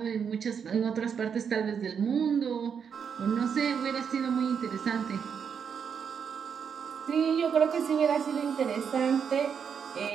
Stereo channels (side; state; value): left; quieter; 7.0 dB